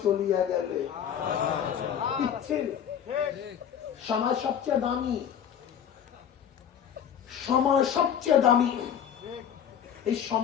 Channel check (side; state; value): right; quieter; 8.7 dB